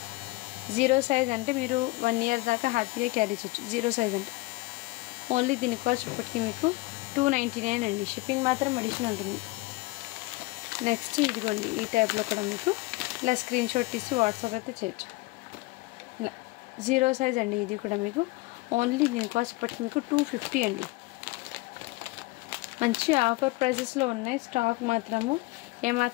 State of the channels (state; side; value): quieter; right; 22.5 dB